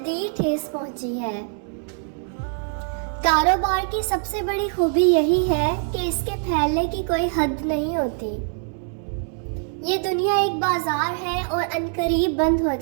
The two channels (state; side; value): silent; left; 55 dB below the other